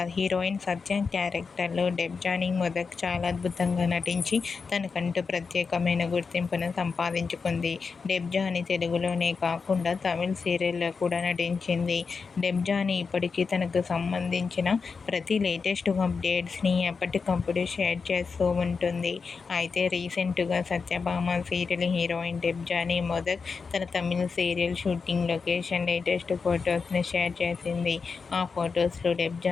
హీరోయిన్ సత్య క్యారెక్టర్లో డెబ్జానీ మొదక్ చాలా అద్భుతంగా నటించి తనకంటూ ప్రత్యేకమైన గుర్తింపును సంపాదించుకుంది. డెబ్జానీ తెలుగులోనే కాకుండా తమిళ సీరియల్లో కూడా నటించింది. డెబ్జానీ ఇప్పటికీ తనకు సంబంధించిన ప్రతి లేటెస్ట్ అప్డేట్స్ని ఎప్పటికప్పుడు షేర్ చేస్తూ ఉంటుంది. అయితే రీసెంట్గా సత్యభామ సీరియల్ హీరోయిన్ డెబ్జానీ మొదక్ తన తమిళ సీరియల్ షూటింగ్ లొకేషన్ లేటెస్ట్ ఫొటోస్ని షేర్ చేసింది. ఆ ఫొటోస్లో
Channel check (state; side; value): quieter; right; 5.0 dB